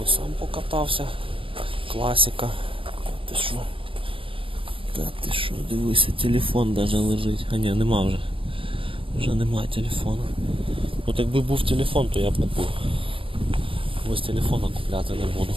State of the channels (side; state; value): left; late; 0.26 ms